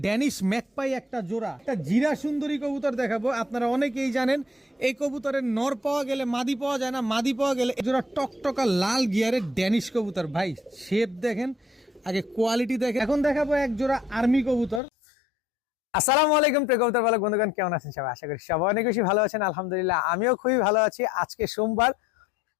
ড্যানিশ ম্যাকপাই একটা জোড়া, একটা জিরা সুন্দরী কবুতর দেখাবো। আপনারা অনেকেই জানেন এই কবুতরের নর পাওয়া গেলে মাদি পাওয়া যায় না, মাদি পাওয়া গেলে এই জোড়া টকটকা লাল গিয়ারের ড্যানিশ কবুতর। ভাই শেপ দেখেন, আগে কোয়ালিটি দেখেন। এখন দেখাবো এক জোড়া আর্মি কবুতর। আসসালামু আলাইকুম প্রিয় কবুতর পালক বন্ধুগণ, কেমন আছেন সবাই? আশা করি সবাই অনেক বেশি ভালো আছেন। আলহামদুলিল্লাহ আমিও খুবই ভালো আছি। আজকে সোমবার,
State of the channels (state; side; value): drops out; right; at 14.8 s